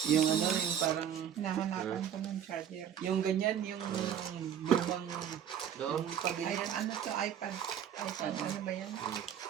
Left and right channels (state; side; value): quieter; left; 9.2 dB